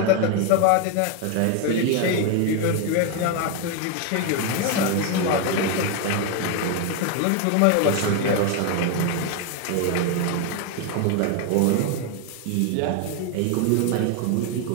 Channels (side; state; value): both; different; correlation 0.01